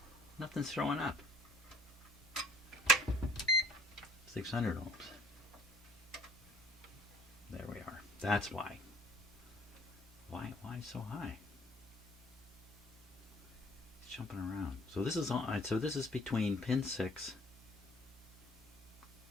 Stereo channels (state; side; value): normal; both; correlation 0.56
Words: Nothing's showing up. 600 ohms. There we are. That's why. Why so high? It's jumping around. So this is on. So this is between pin 6